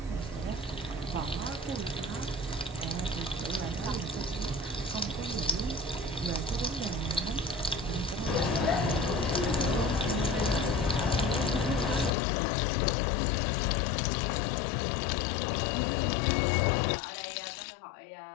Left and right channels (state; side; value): drops out; right; at 12.1 s